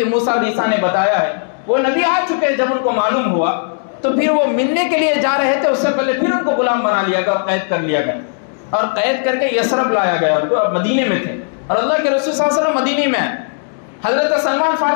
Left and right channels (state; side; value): silent; right; digital silence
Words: موسیٰ علیہ السلام نے بتایا ہے، وہ نبی آ چکے۔ جب ان کو معلوم ہوا تو پھر وہ ملنے کے لیے جا رہے تھے، اس سے پہلے پھر ان کو غلام بنا لیا گیا، قید کر لیا گیا، اور قید کر کے یثرب لایا گیا، وہ مدینے میں تھے، اور اللہ کے رسول صلی اللہ علیہ وسلم مدینے میں ہیں۔ حضرت سلمان